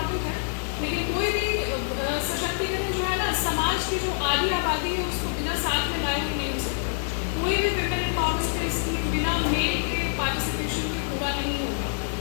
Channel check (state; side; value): silent; right; 61 dB below the other